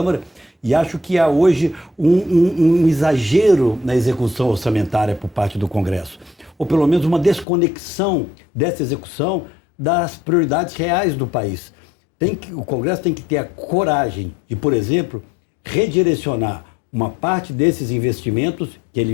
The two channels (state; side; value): drops out; right; at 7.5 s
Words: e acho que há hoje um exagero na execução orçamentária por parte do Congresso, ou pelo menos uma desconexão dessa execução das prioridades reais do país. O Congresso tem que ter a coragem de, por exemplo, redirecionar uma parte desses investimentos que